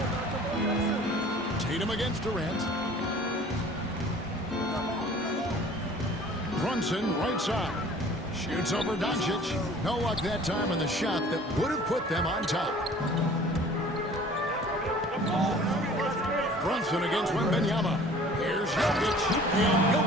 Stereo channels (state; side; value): normal; both; correlation 0.48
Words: Tatum against Durant. Brunson, right side. Shoots over Doncic. No luck that time on the shot that would have put them on top. Brunson against Wembanyama. Here's Jokic. And